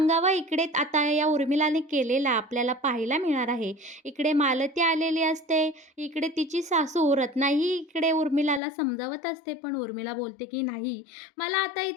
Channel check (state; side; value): drops out; right; at 8.6 s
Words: इकडे आता या उर्मिलाने केलेला आपल्याला पाहायला मिळणार आहे. इकडे मालती आलेली असते. इकडे तिची सासू रत्नाही इकडे उर्मिलाला समजावत असते, पण उर्मिला बोलते की नाही, मला आता